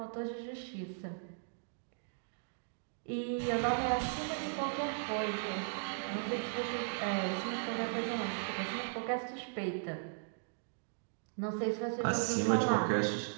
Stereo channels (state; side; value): silent; left; digital silence